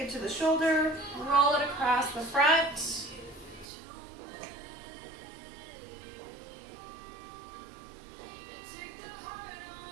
it to the shoulder, roll it across the front.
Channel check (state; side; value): drops out; left; at 3.7 s